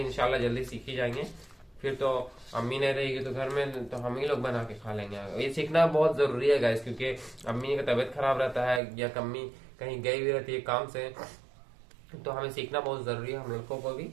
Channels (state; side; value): drops out; left; at 8.8 s